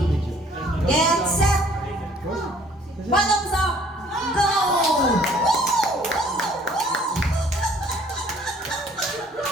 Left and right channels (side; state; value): both; normal; correlation 0.57